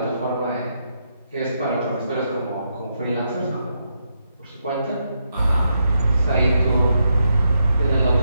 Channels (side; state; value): both; inverted; correlation -0.81